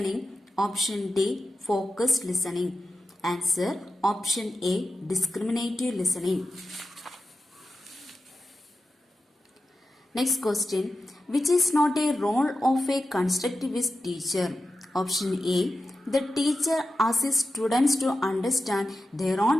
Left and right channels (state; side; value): normal; both; correlation 0.92